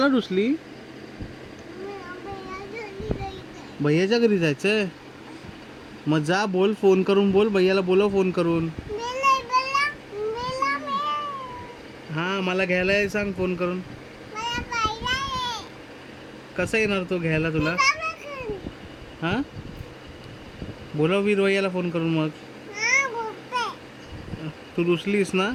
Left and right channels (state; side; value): identical; both; correlation 1.00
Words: रुसली? भैयाच्या घरी जायचंय? मग जा, बोल, फोन करून बोल, भैयाला बोलव फोन करून. हा मला घ्यायला ये सांग फोन करून. कसं येणार तो घ्यायला तुला? हा बोलव वीर भैयाला फोन करून. मग तू रुसलीस ना?